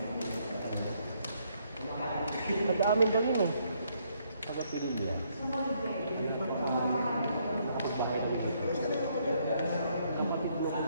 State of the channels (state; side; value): inverted; both; correlation -0.71